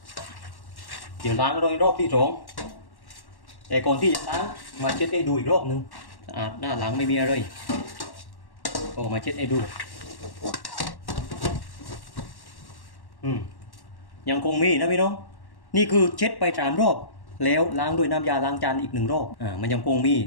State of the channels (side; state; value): right; late; 1.1 ms